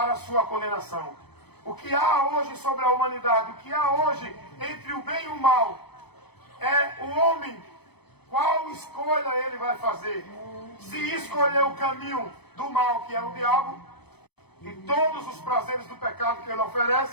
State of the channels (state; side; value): late; right; 0.98 ms